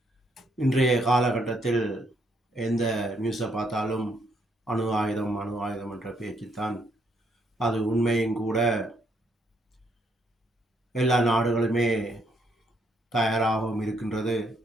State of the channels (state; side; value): normal; both; correlation 0.72